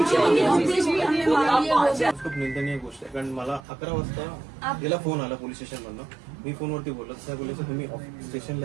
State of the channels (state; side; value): drops out; left; at 3.7 s